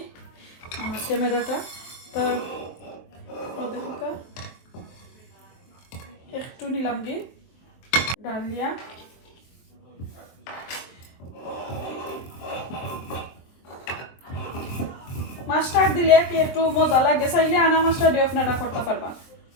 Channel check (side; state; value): right; late; 23 ms